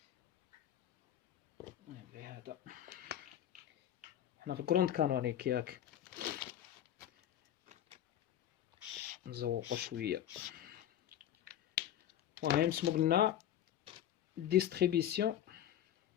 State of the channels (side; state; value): right; quieter; 11.2 dB